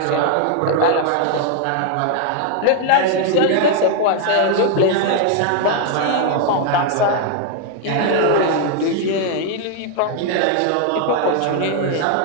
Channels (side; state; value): both; different; correlation 0.00